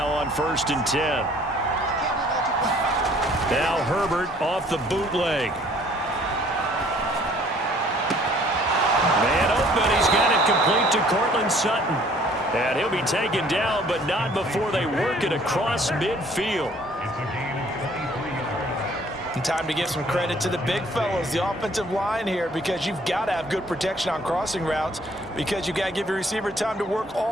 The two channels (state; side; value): normal; both; correlation 0.57